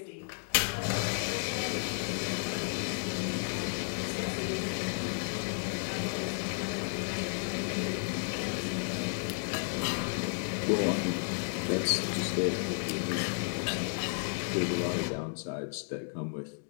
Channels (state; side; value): silent; right; 56 dB below the other